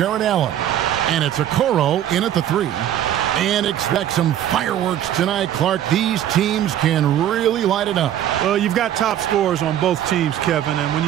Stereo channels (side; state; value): left; quieter; 11.2 dB